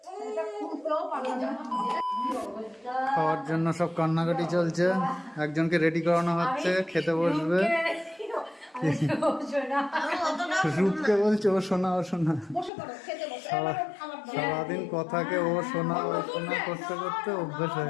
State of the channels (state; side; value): drops out; right; at 12.7 s